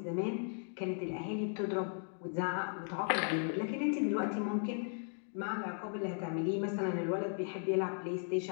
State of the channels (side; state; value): right; silent; 53 dB below the other